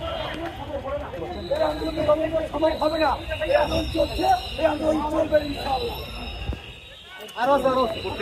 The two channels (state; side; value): identical; both; correlation 1.00